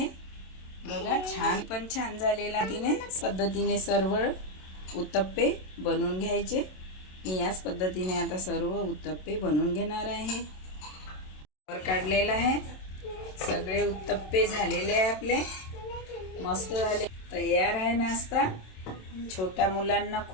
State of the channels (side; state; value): right; late; 27 ms